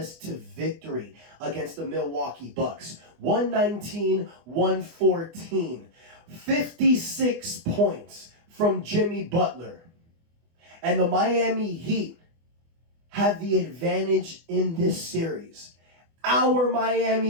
to victory against the Milwaukee Bucks. 119-114. 56 points from Jimmy Butler. And the Miami Heat have the advantage in this series. Our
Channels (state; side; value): late; left; 24 ms